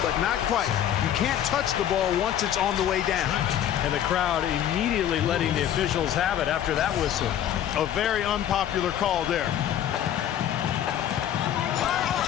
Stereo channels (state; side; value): quieter; right; 10.6 dB